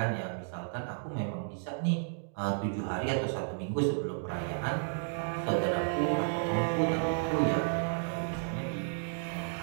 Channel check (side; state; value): left; silent; digital silence